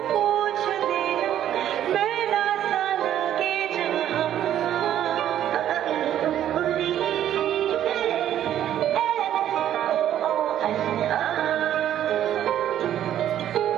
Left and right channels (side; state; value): left; quieter; 11.1 dB